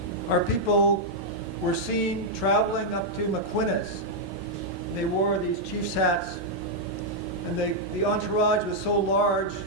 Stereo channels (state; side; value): normal; both; correlation -0.03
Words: Our people were seen traveling up to Maquinas. They wore these chief's hats, and the entourage was so large,